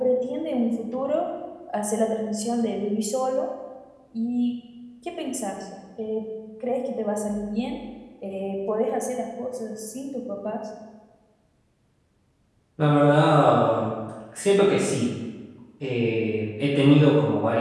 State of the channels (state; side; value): identical; both; correlation 1.00